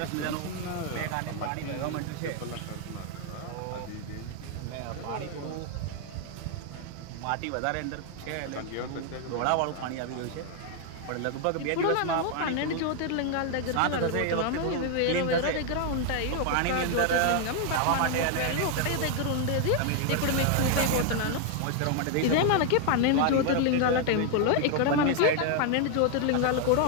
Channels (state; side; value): different; both; correlation 0.00